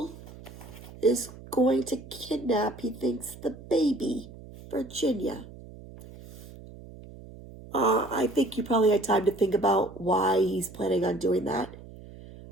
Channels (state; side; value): noise; right; hum, 17 dB below the sound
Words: is going to kidnap, he thinks, the baby, Virginia. I think you probably had time to think about why he's planning on doing that.